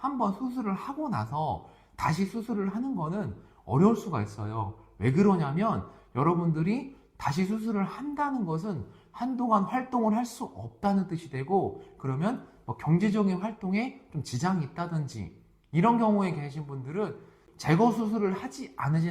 수술을 하고 나서 다시 수술을 하는 거는 어려울 수가 있어요. 왜 그러냐면 여러분들이 다시 수술을 한다는 것은 한동안 활동을 할 수 없다는 뜻이 되고, 그러면 경제적인 활동에 좀 지장이 있다든지 이런 경우에 계신 분들은 제거 수술을 하지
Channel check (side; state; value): both; identical; correlation 1.00